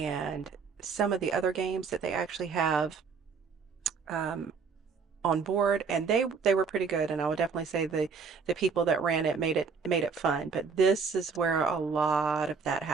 some of the other games that they actually have on on board, and they were pretty good. And I would definitely say the people that ran it made it fun. But this is where a lot of that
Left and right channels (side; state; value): left; quieter; 5.4 dB